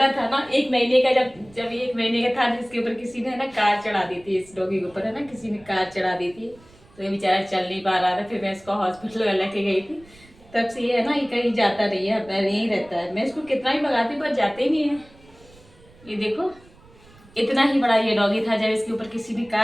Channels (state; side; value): noise; right; rumble, 26 dB below the sound